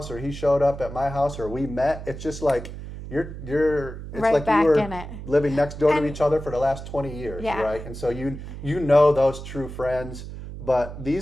or he showed up at my house or we met, it's just like it's Right like back you were in it. living next door to And- each other for the last 20 years, Yeah. right? And so you know those true friends, but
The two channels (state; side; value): noise; right; hum, 10 dB below the sound